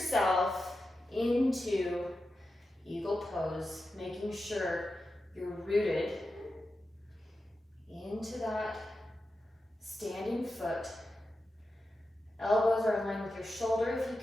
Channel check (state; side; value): normal; both; correlation 0.91